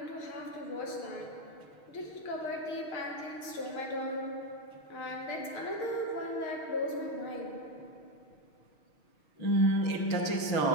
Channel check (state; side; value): late; right; 6.4 ms